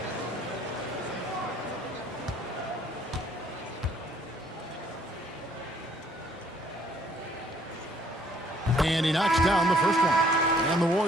And he knocks down the first one. And the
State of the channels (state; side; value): normal; both; correlation 0.62